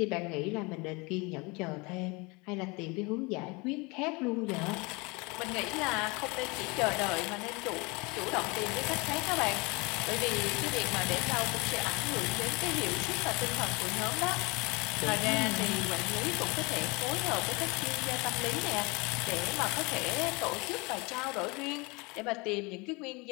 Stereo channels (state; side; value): quieter; right; 26.9 dB